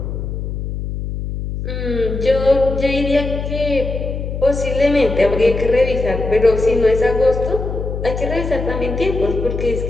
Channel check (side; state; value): left; noise; hum, 5 dB below the sound